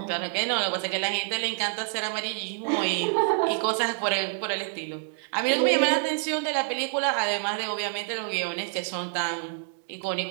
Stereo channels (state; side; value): silent; left; digital silence